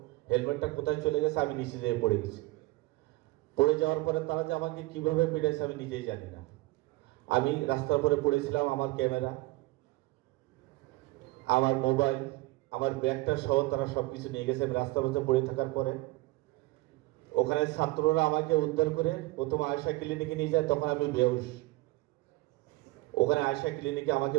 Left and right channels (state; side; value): quieter; left; 21.0 dB